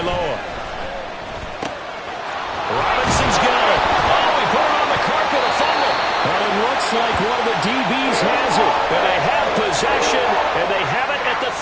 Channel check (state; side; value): identical; both; correlation 1.00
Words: Robinson's got it. Oh, he put it on the carpet, a fumble. And it looks like one of the DBs has it. And they have possession, and they have it at the